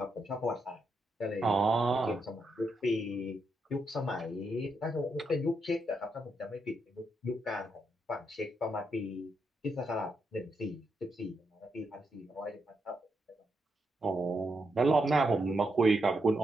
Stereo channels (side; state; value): both; normal; correlation 0.81